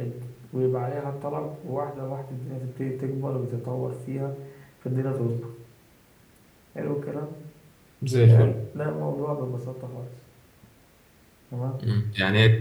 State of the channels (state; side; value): identical; both; correlation 1.00